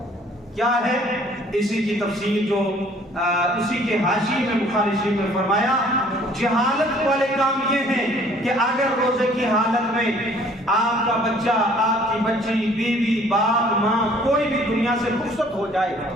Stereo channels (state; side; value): normal; both; correlation 0.57